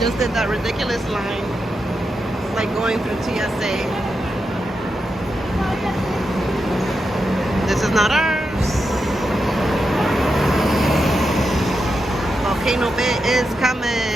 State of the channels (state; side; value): normal; both; correlation 0.87